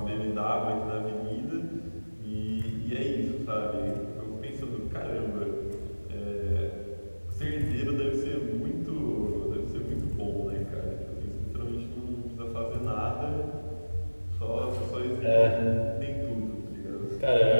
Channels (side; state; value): both; inverted; correlation -1.00